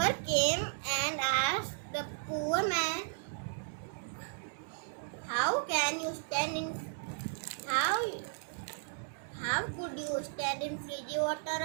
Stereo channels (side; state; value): left; silent; 54 dB below the other